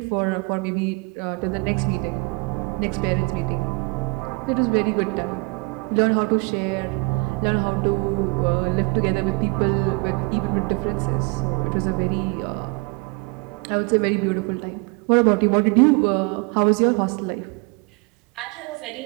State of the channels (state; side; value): quieter; left; 28.6 dB